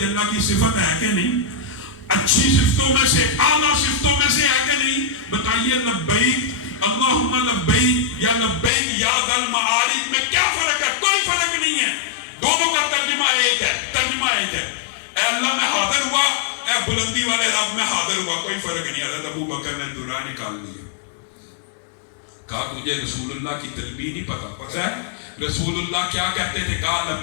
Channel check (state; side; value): drops out; right; at 8.7 s